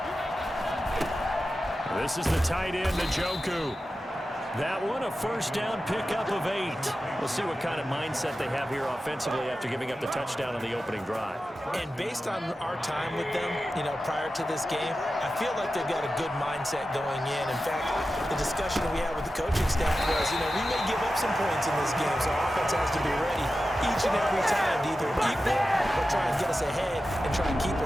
This is the tight end, Njoku. That one, a 1st down pickup of 8. We'll see what kind of mindset they have here offensively after giving up the touchdown on the opening drive. And based on our time with them, prior to this game, I feel like they've got a good mindset going in. In fact, the discussion that we had with the coaching staff was, we may give up some points in this game, so our offense has to be ready each and every time to either equal or try and get us ahead and try and keep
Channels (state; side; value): normal; both; correlation 0.93